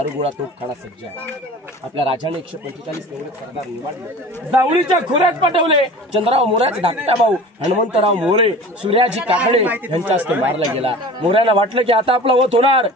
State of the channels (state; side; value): normal; both; correlation 0.40